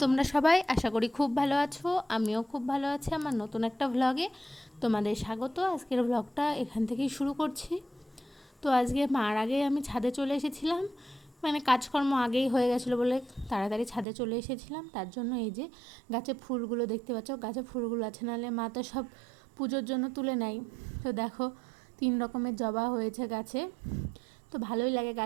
তোমরা সবাই? আশা করি খুব ভালো আছো। আমিও খুব ভালো আছি। আমার নতুন একটা ভ্লগে তোমাদের স্বাগত। আজকের ভ্লগটা এখান থেকেই শুরু করছি। তো আজকে মার আগে আমি ছাদে চলে এসেছিলাম, মানে কাজকর্ম আগেই হয়ে গেছিলো বলে তাড়াতাড়ি ছাদে চলে এসেছিলাম। তার জন্য এই যে গাছে ফুলগুলো দেখতে পাচ্ছ, গাছে ফুলগুলো আছে, নাহলে মা তো সব পুজোর জন্য তুলে নেয়। তো দেখো 3 রকমের জবা হয়েছে গাছে। তো ভালোই লাগে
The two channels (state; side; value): drops out; left; at 14.1 s